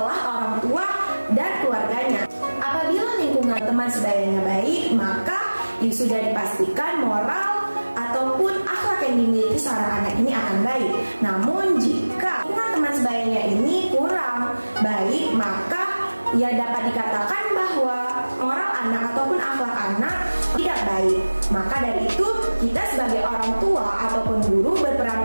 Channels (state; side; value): inverted; both; correlation -1.00